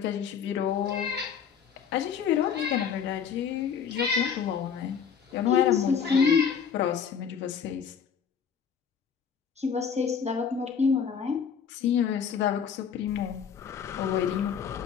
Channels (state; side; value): quieter; right; 7.1 dB